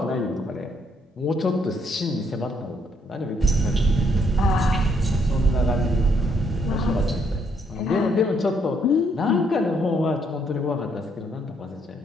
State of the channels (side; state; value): both; normal; correlation 0.71